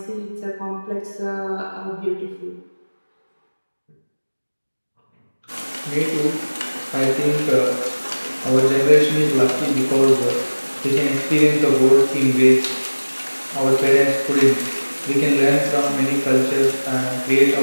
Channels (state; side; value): inverted; both; correlation -1.00